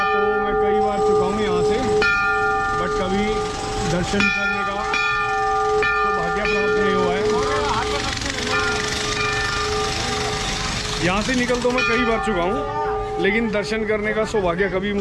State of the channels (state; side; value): identical; both; correlation 1.00